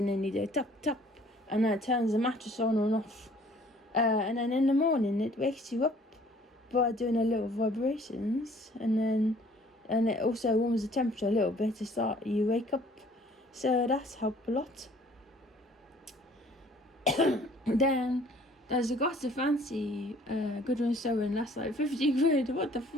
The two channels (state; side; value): normal; both; correlation 0.56